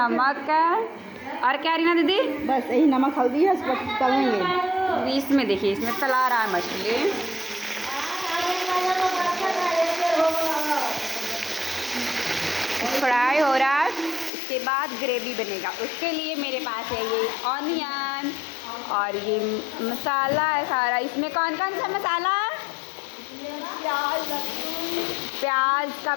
है और क्या रीना दीदी? बस यही नमक हल्दी है, इसको तलेंगे। इसमें देखिए, इसमें तला रहा है मछली। फ्राई हो रहा है, उसके बाद ग्रेवी बनेगा। उसके लिए मेरे पास है ये ऑनियन और ये मसाला है सारा। इसमें कौन कौन सा मसाला है? प्याज का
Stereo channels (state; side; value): drops out; right; at 14.3 s